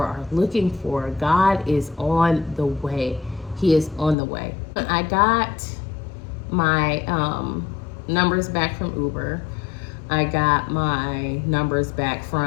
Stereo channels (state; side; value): drops out; right; at 4.2 s